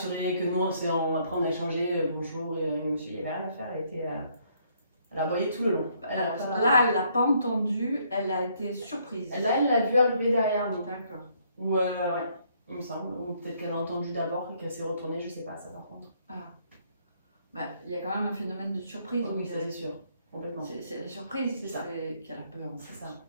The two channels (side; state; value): both; inverted; correlation -0.68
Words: que nous après on a échangé bonjour et le monsieur il avait rien à faire, elle a aboyé tout le long. Alors, là, elle l'a pas entendu, elle a été surprise. Là, elle l'a vu arriver derrière nous. D'accord. Ouais, il me semble. Ou peut-être qu'elle a entendu d'abord et qu'elle s'est retournée, je sais pas ça par contre. Ah. Bah, il y a quand même un phénomène de surprise. Oui, ça c'est sûr. Complètement. C'est la surprise qui a la peur. C'est ça.